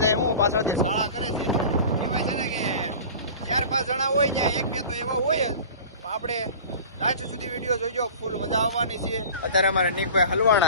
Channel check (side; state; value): both; inverted; correlation -0.38